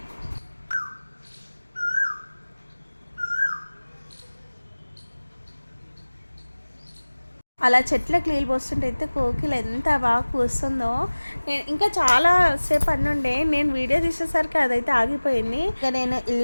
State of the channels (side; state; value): both; inverted; correlation -1.00